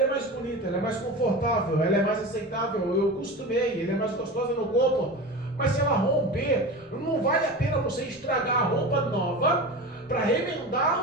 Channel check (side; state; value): both; normal; correlation 0.29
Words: é mais bonita, ela é mais confortável, ela é mais aceitável, eu costumei, ela é mais gostosa no corpo. Mas se ela romper, não vale a pena você estragar a roupa nova para remendar